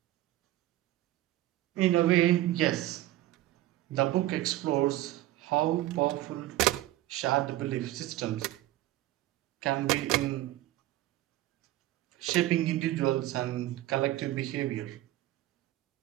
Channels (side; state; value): left; quieter; 15.4 dB